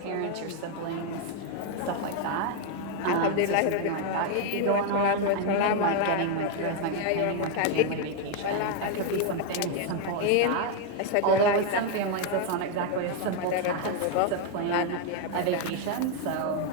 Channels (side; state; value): both; different; correlation 0.00